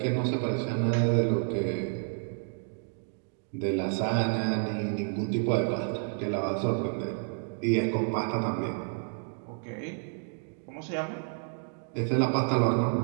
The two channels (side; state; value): left; silent; 58 dB below the other